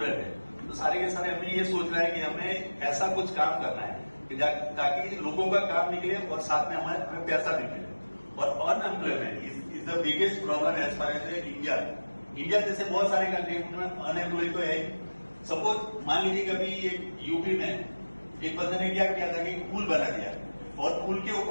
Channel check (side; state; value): both; inverted; correlation -1.00